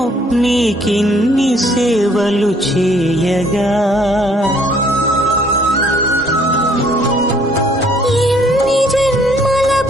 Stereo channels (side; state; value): both; normal; correlation 0.62